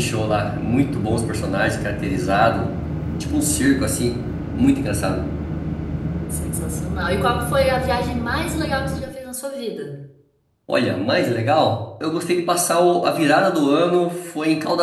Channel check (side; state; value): both; identical; correlation 1.00